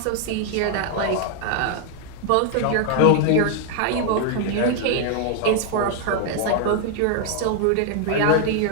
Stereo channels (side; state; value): both; different; correlation 0.00